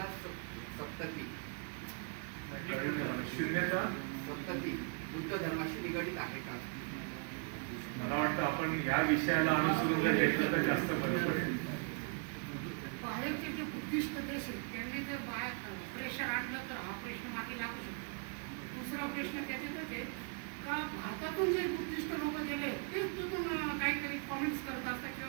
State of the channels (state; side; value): quieter; left; 39.6 dB